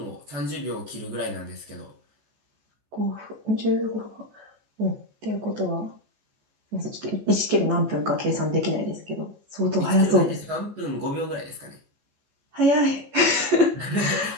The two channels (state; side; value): late; left; 14 ms